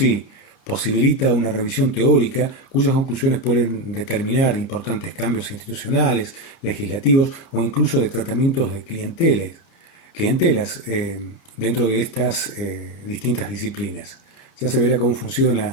posibilita una revisión teórica cuyas conclusiones pueden determinar importantes cambios institucionales, legislativos o incluso de tratamientos de clientelas dentro de estas distintas disciplinas. Ya se verá cómo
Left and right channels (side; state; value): right; late; 30 ms